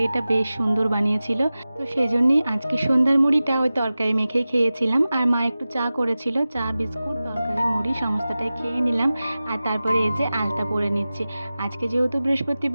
বেশ সুন্দর বানিয়েছিল। তো সেজন্যই আজকে সন্ধ্যার মুড়িটা ওই তরকারি মেখেই খেয়েছিলাম। আর মা একটু চা করেছিল, চা বিস্কুট তরকারি মুড়ি সমস্তটাই খেয়ে নিলাম। আর তারপরে এই যে আলতা পরে নিচ্ছি। আজকে যেহেতু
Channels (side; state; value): both; inverted; correlation -0.96